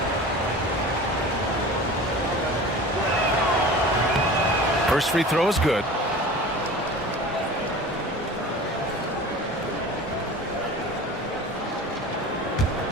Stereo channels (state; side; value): normal; both; correlation 0.38